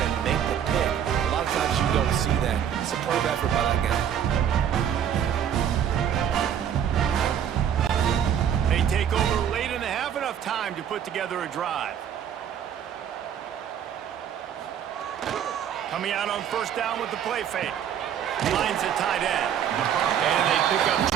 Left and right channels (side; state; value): left; quieter; 9.1 dB